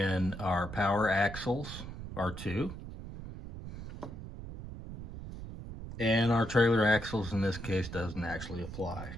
our power axles are 2. And our trailer axles in this case doesn't actually apply.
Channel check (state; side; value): noise; right; rumble, 10 dB below the sound